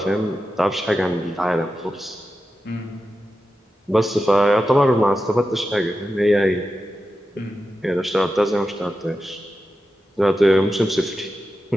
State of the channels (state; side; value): normal; both; correlation 0.91